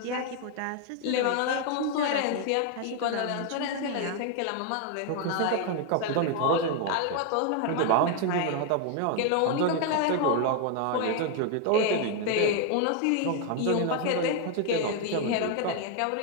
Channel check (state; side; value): different; both; correlation 0.00